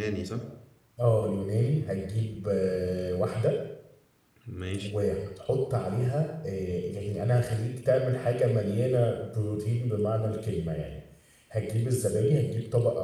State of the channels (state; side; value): identical; both; correlation 1.00